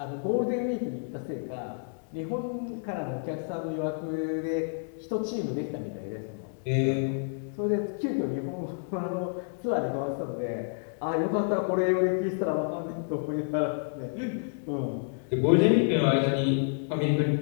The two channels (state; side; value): silent; right; digital silence